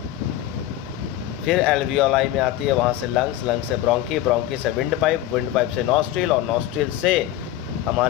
फिर एल्वियोलाई में आती है, वहाँ से लंग्स, लंग्स से ब्रोंकी, ब्रोंकी से विंड पाइप से नॉस्ट्रिल, और नॉस्ट्रिल से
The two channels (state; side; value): quieter; right; 13.4 dB